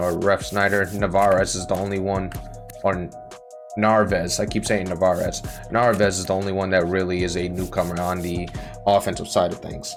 Ref Snyder. Narvaez is the only one, or Narvaez. I keep saying Narvaez. Narvaez is the only one that really is a newcomer on the offensive side of things.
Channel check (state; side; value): identical; both; correlation 1.00